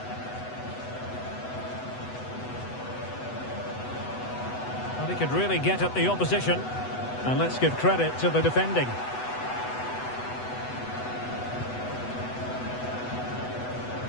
Well, he could really get at the opposition. And let's give credit to the defending.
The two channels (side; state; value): right; late; 8.0 ms